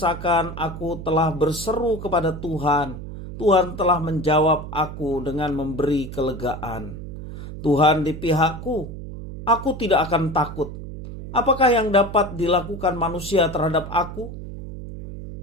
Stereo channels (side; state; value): right; noise; hum, 10 dB below the sound